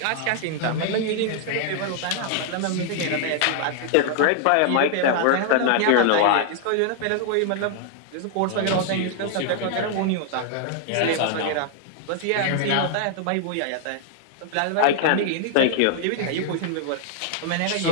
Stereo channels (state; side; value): different; both; correlation 0.00